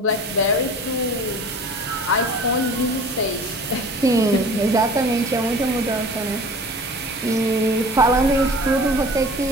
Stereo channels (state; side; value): normal; both; correlation 0.43